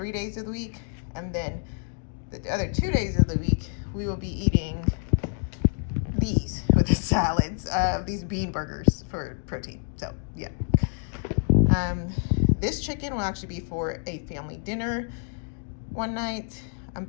days of the week. And then the other 2 days of the week, we will be eating these with the salads, these bean burgers for protein. So yeah. This chicken will actually be for a family dinner one night. I'm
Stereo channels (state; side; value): silent; right; 58 dB below the other